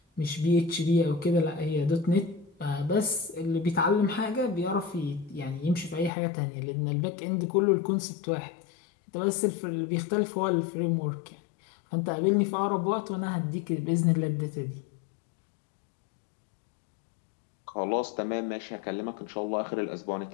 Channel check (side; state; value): right; drops out; at 6.1 s